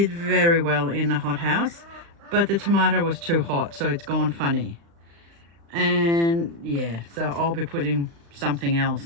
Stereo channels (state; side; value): late; left; 35 ms